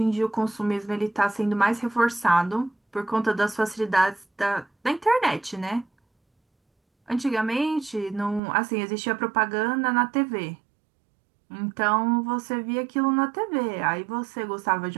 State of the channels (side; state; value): left; drops out; at 8.4 s